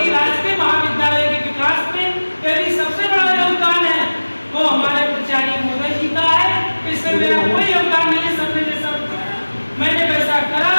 राजकीय महाविद्यालय के विकास में यदि सबसे बड़ा योगदान है वो हमारे प्राचार्य महोदय जी का है। इससे मेरा कोई योगदान नहीं है। सर ने जैसा मैंने वैसा करा,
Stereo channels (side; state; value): both; inverted; correlation -1.00